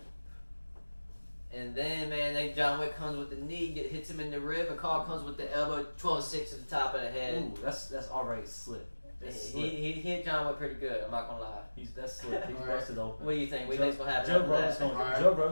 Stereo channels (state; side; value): inverted; both; correlation -1.00